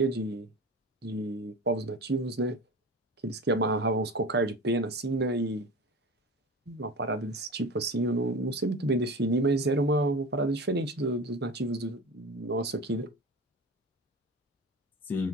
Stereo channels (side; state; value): both; normal; correlation 0.32